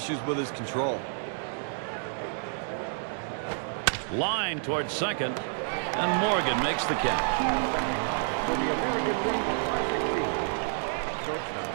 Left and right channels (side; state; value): left; silent; digital silence